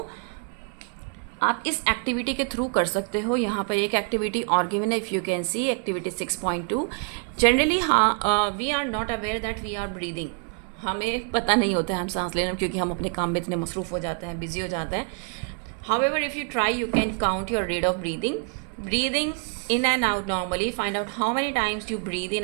आप इस एक्टिविटी के थ्रू कर सकते हो। यहाँ पर एक एक्टिविटी और गिवन है, if you can see activity 6.2। Generally we are not aware that we are breathing. हमें पता नहीं होता है हम सांस लेना, क्योंकि हम अपने काम में इतने मसरूफ़ हो जाते हैं, बिजी हो जाते हैं। However, if you try, you can count your rate of breathing. Breathing in and out normally. Find out how many times you breathe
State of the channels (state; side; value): quieter; left; 39.5 dB